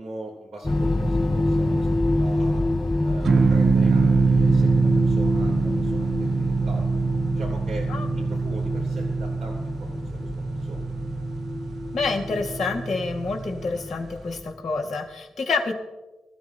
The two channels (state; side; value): normal; both; correlation 0.90